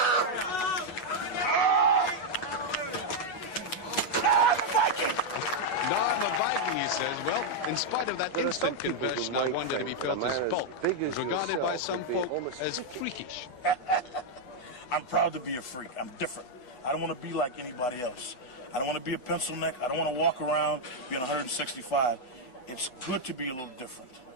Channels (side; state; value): right; late; 5.2 ms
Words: No, I'm a Viking, he says. Well, in spite of that instant conversion, I wondered if he felt his bulk was regarded by some folk as freakish. I'm proud to be a freak. I'm different. I don't want to be like anybody else. I don't want to be a pencil neck. I don't want to walk around being 165. It's good to be a little different,